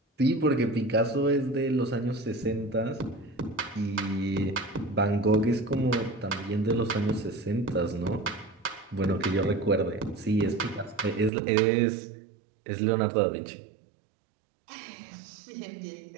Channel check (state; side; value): drops out; left; at 11.3 s